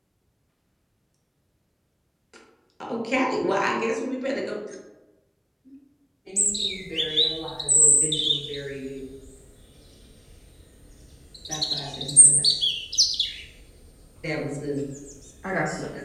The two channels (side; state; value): both; identical; correlation 1.00